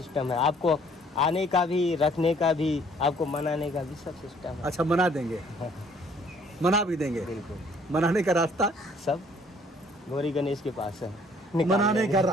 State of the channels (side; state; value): both; normal; correlation 0.60